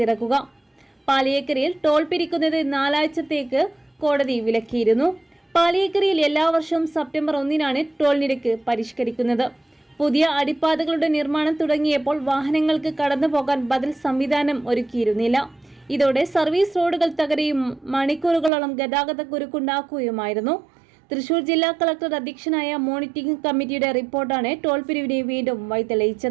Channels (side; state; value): left; drops out; at 18.5 s